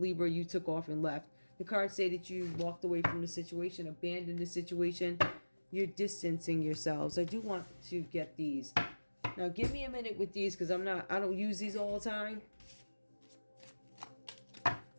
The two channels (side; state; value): both; inverted; correlation -1.00